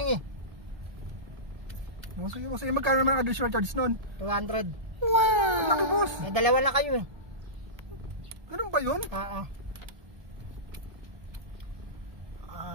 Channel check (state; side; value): late; left; 1.3 ms